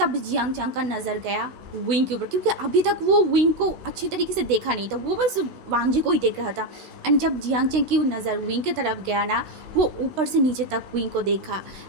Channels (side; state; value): left; late; 16 ms